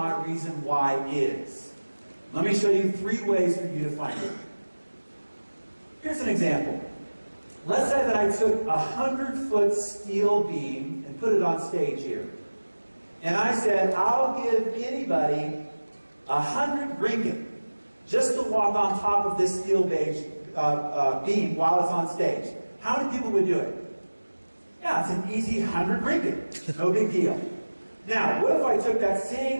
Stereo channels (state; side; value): inverted; both; correlation -1.00